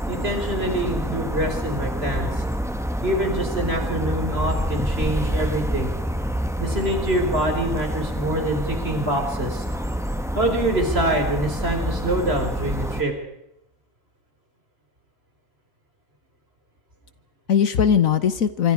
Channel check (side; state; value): both; normal; correlation 0.32